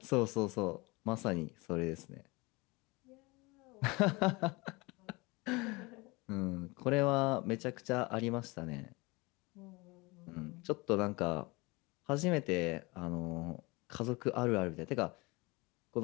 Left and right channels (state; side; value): quieter; right; 24.8 dB